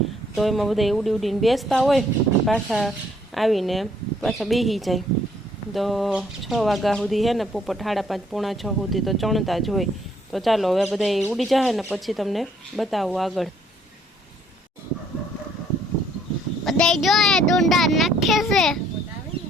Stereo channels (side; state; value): both; normal; correlation 0.65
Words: તો એમાં બધા ઉડીને બેસતા હોય પાછા આવીને પાછા બેસી જાય. તો 6 વાગ્યા સુધી છે ને પોપટ 5:30 પોણા 6 સુધી તો ચણતા જ હોય. તો ચાલો હવે બધા ઉડી જાય ને પછી તમને બતાવું આગળ. બધા જો ડુંડા નાખે છે